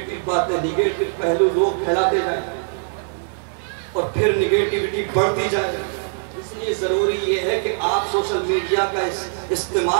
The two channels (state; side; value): silent; left; 65 dB below the other